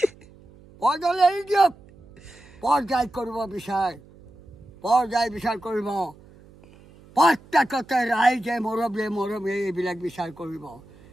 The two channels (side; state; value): right; noise; hum, 24 dB below the sound